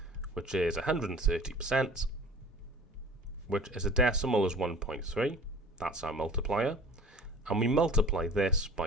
which is 130%, which is a decimal as 1.3. That's our multiplier. And we multiply this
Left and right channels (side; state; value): both; normal; correlation 0.44